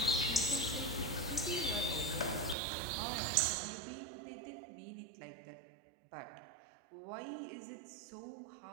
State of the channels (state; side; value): drops out; left; at 2.6 s